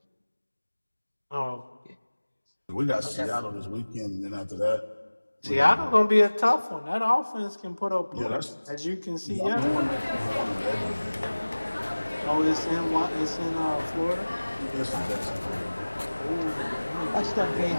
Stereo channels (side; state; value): both; inverted; correlation -1.00